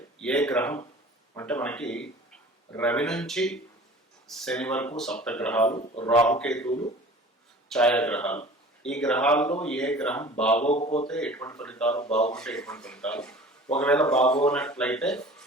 ఏ గ్రహం అంటే మనకి రవి నుంచి శని వరకు సప్తగ్రహాలు, రాహుకేతువులు, ఛాయాగ్రహాలు. ఈ గ్రహాల్లో ఏ గ్రహం బాగోకపోతే ఎటువంటి ఫలితాలు, బాగుంటే ఎటువంటి ఫలితాలు, ఒకవేళ బాగోనట్లయితే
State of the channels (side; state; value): both; normal; correlation 0.43